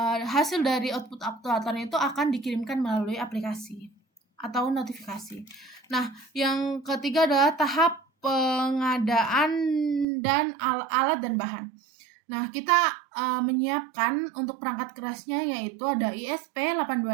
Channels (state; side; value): drops out; left; at 10.1 s